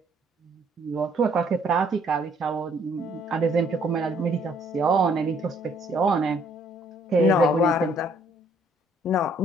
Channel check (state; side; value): normal; both; correlation 0.64